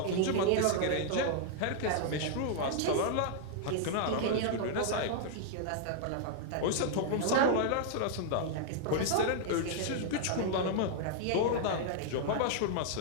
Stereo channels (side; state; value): both; different; correlation -0.01